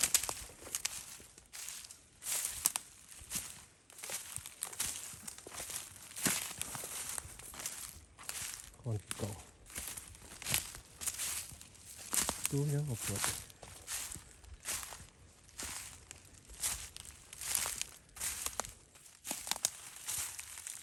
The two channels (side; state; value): both; normal; correlation 0.90